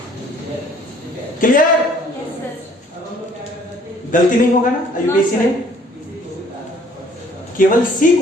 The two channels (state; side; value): normal; both; correlation 0.58